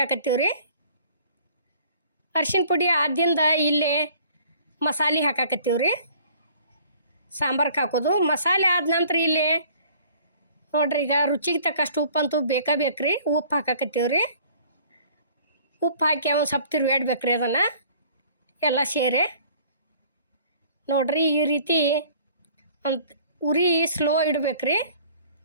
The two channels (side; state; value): both; inverted; correlation -0.53